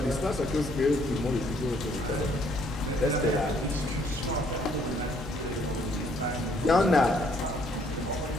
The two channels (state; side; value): normal; both; correlation 0.65